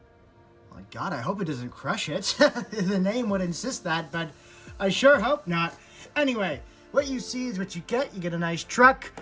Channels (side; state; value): both; identical; correlation 1.00